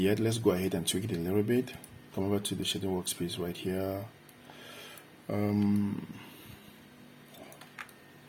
Let's go ahead and tweak it a little bit. Come over to the shading workspace right here.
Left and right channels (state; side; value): identical; both; correlation 1.00